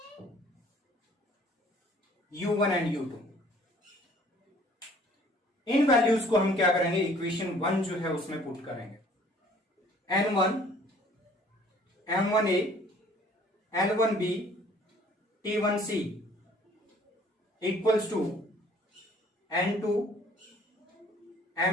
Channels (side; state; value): both; normal; correlation 0.56